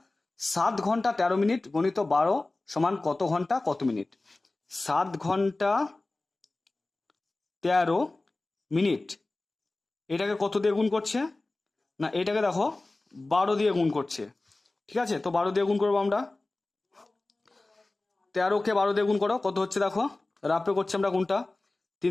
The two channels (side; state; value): right; quieter; 3.0 dB